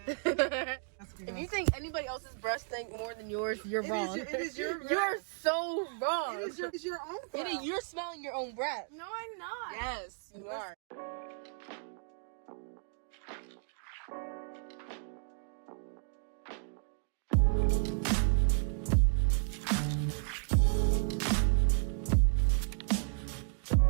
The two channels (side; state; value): left; silent; 55 dB below the other